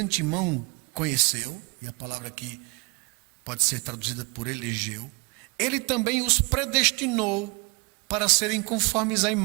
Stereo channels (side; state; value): left; quieter; 30.8 dB